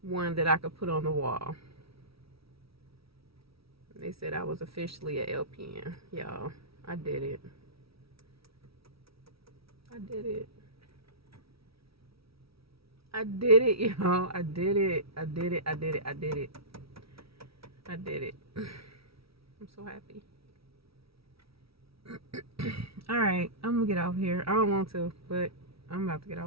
one that I could put on the wall. They said I was officially a LPN. Y'all, I did it. I did it. I did it, y'all. I did it. I did it. I did it. I did it. I did it. I'm so happy. Alright, I'm gonna get off here. I don't want to, but I'm about to get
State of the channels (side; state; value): left; late; 0.76 ms